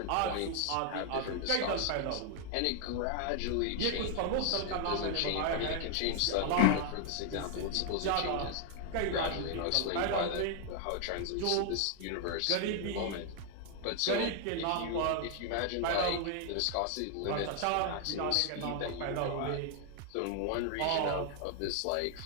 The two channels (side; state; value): both; different; correlation 0.00